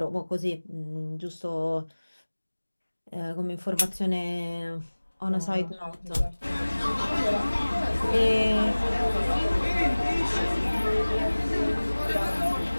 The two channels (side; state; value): both; inverted; correlation -1.00